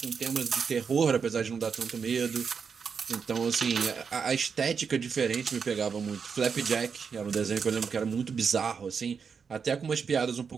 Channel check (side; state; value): left; quieter; 6.1 dB